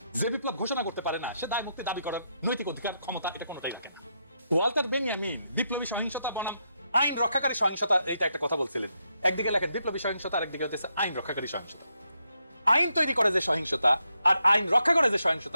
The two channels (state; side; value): inverted; both; correlation -0.81